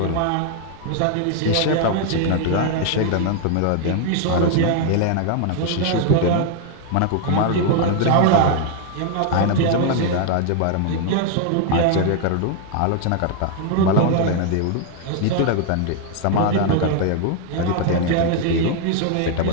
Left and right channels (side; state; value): both; different; correlation 0.00